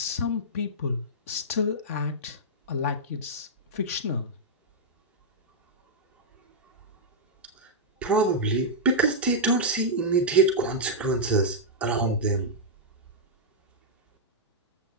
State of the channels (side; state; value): both; normal; correlation -0.08